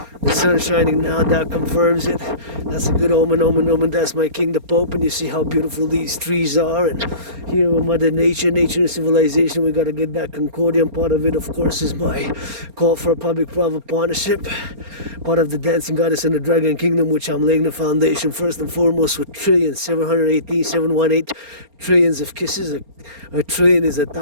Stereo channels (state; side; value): late; left; 4.3 ms